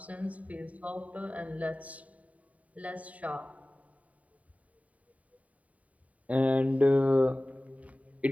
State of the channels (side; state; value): left; late; 0.069 ms